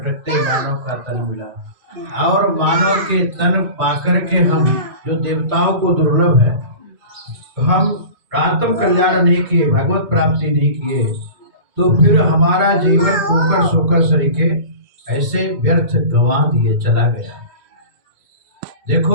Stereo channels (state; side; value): late; left; 2.2 ms